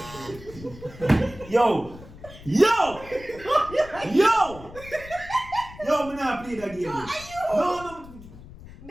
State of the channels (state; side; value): noise; left; rumble, 17 dB below the sound